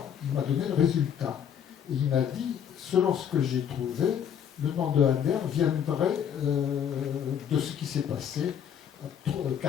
il m'a donné le résultat. Et il m'a dit, selon ce que j'ai trouvé, le nom de Adair viendrait de ce qui s'est passé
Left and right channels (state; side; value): quieter; right; 8.6 dB